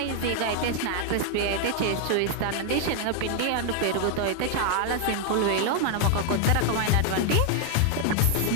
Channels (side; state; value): both; different; correlation 0.00